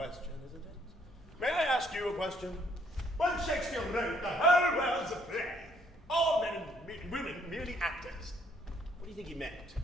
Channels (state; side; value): normal; both; correlation 0.66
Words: isn't it? May I ask ask you a question? When Shakespeare wrote the whole world's a play, all men and women merely actors, what do you think he meant?